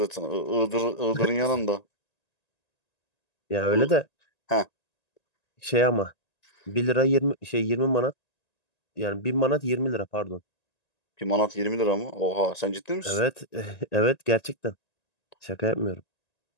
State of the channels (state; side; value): late; right; 1.9 ms